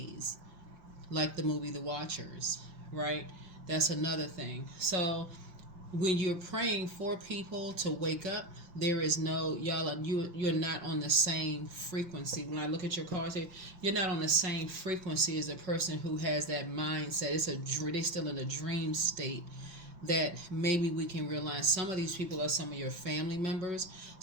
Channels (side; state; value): left; late; 5.7 ms